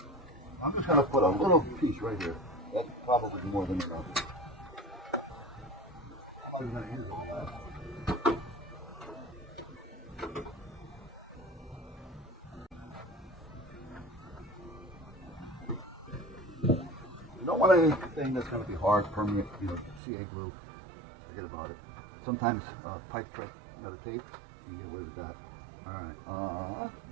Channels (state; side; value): drops out; left; at 20.0 s